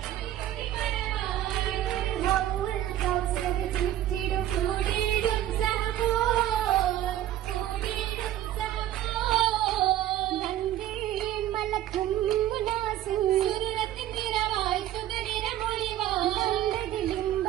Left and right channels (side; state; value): left; quieter; 12.7 dB